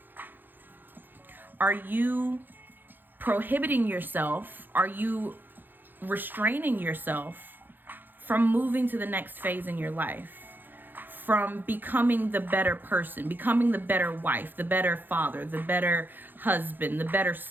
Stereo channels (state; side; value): late; left; 0.091 ms